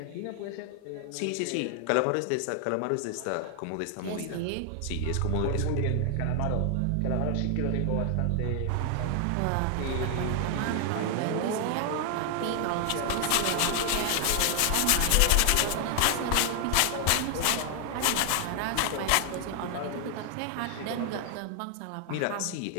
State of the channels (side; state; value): both; different; correlation 0.00